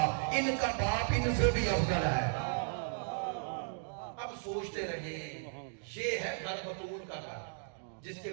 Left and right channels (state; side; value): silent; left; digital silence